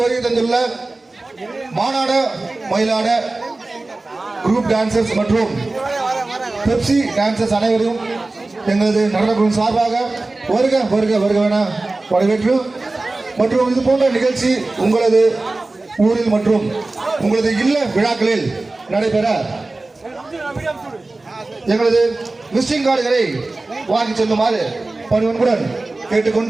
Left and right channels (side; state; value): left; quieter; 3.2 dB